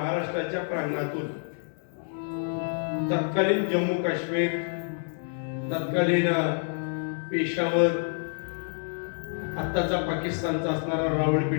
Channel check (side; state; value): right; silent; 59 dB below the other